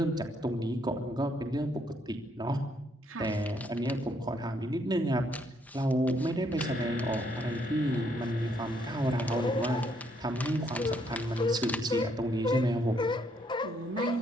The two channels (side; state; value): both; normal; correlation 0.71